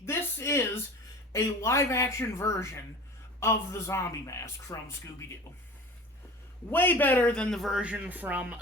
this is a live-action version of the zombie mask from Scooby-Doo. Way better than the version from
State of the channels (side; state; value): both; normal; correlation 0.38